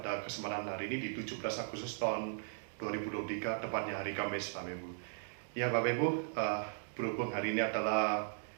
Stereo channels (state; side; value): silent; left; digital silence